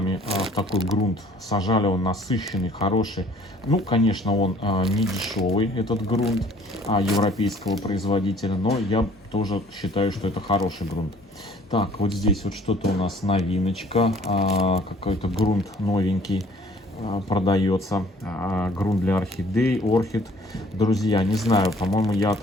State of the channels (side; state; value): both; normal; correlation 0.55